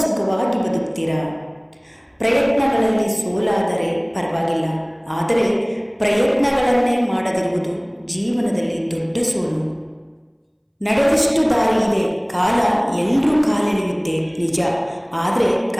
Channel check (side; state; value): both; identical; correlation 1.00